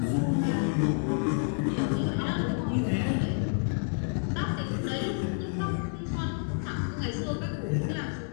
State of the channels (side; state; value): right; silent; 58 dB below the other